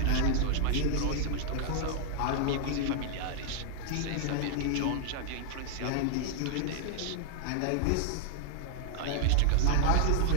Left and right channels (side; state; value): both; different; correlation 0.00